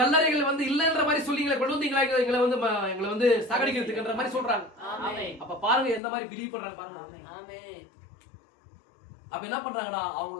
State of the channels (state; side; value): drops out; right; at 6.0 s